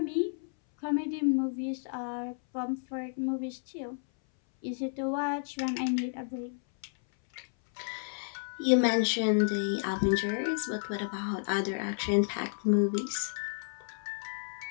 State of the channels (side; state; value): right; silent; 57 dB below the other